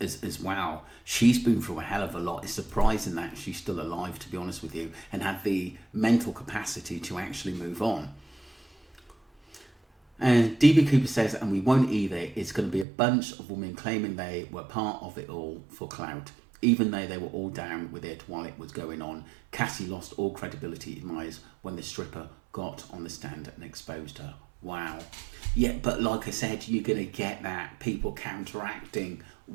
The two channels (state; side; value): drops out; left; at 12.9 s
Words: well. She's been through a hell of a lot. It's surprising that she's still alive, to be honest with you, and had the mental capacity to actually move on. And DB Cooper says, and we won't either, it's going to be a bunch of women claiming they were part of it all for clout. Even though they were all down with it while it was going on, Cassie lost all credibility in my eyes when the stripper got on the stand and exposed her. Wow. Yeah, but like I said, you're going to get that, people counteracting